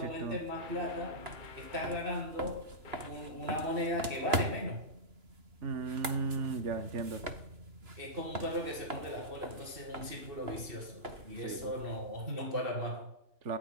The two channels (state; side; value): late; left; 2.9 ms